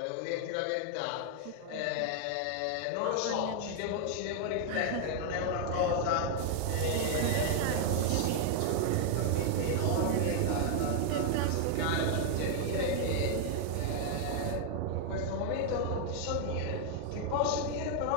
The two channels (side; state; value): both; different; correlation 0.00